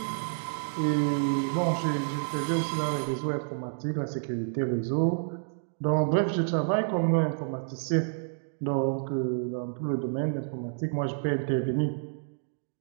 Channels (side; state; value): left; silent; digital silence